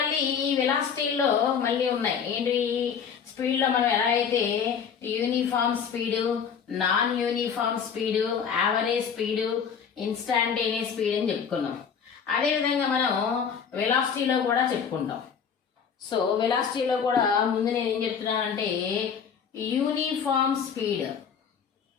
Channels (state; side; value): quieter; right; 6.9 dB